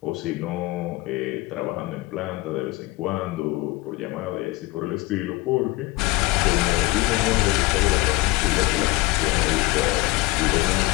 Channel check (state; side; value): quieter; right; 21.2 dB